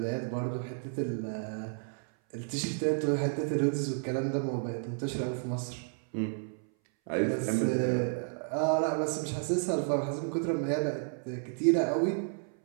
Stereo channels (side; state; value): left; silent; 57 dB below the other